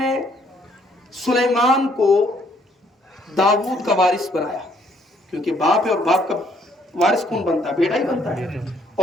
سلیمان کو داؤد کا وارث بنایا، کیونکہ باپ ہے اور باپ کا وارث کون بنتا ہے؟ بیٹا ہی بنتا ہے۔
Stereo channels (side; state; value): both; normal; correlation 0.66